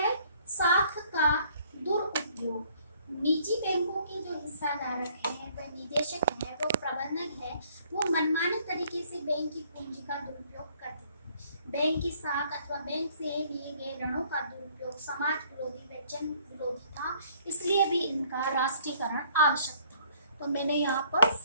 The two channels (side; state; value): both; inverted; correlation -0.61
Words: साख का दुरुपयोग। निजी बैंकों के जो हिस्साधारक हैं, वह निदेशक हैं, वो प्रबंधक है, वो मनमाने तरीके से बैंक की पूंजी का दुरुपयोग करते थे। बैंक की साख अथवा बैंक से लिए गए ऋणों का दुरुपयोग समाज विरोधी व जन विरोधी था, इसलिए भी इनका राष्ट्रीयकरण आवश्यक था। तो मैंने यहाँ पर